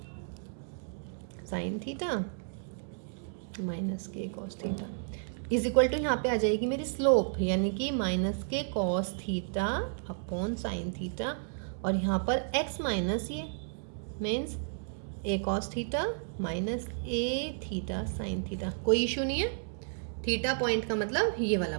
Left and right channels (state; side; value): silent; left; digital silence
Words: साइन थीटा माइनस के cos theta is equal to, यहाँ पे आ जाएगी मेरी स्लोप, यानी कि माइनस के cos theta upon sine theta, और यहाँ पर x माइनस ये means a cos theta minus a theta sine theta. कोई इशू नहीं है। थीटा पॉइंट का मतलब ये वाला